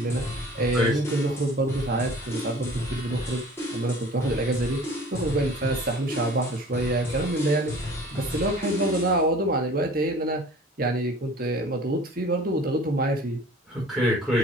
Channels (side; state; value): both; normal; correlation 0.46